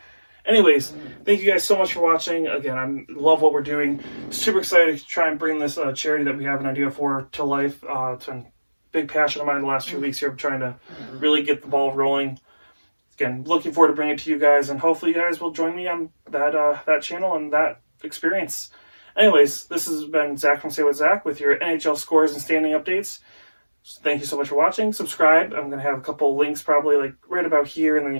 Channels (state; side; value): inverted; both; correlation -1.00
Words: Anyways, thank you guys so much for watching. Again, I love what we're doing. Super excited to try and bring this charity that we have an idea for to life. It's been a big passion of mine the last few weeks here. I'm trying to really get the ball rolling. Again, looking forward to bringing it to you guys, and hopefully you guys will join me on that channel and that experience. Anyways, this has been Zach from Say What Zach with your NHL scores and standing updates. Thank you so much for watching. Subscribe. I'm going to have a couple links probably like right about here, and then